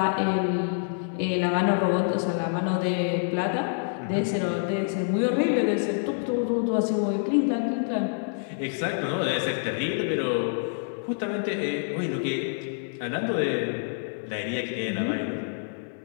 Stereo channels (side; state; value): right; silent; 60 dB below the other